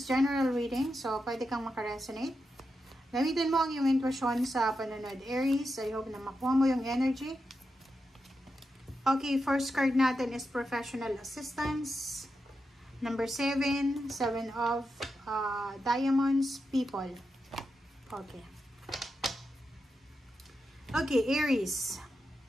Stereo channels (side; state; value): both; normal; correlation 0.87